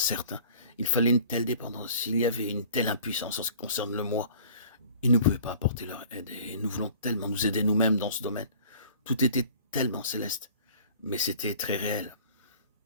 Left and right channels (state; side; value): inverted; both; correlation -0.48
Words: Il fallait une telle dépendance, il y avait une telle impuissance en ce qui concerne le moi. Ils ne pouvaient pas apporter leur aide et nous voulons tellement nous aider nous-mêmes dans ce domaine. Tout était tellement céleste, mais c'était très réel.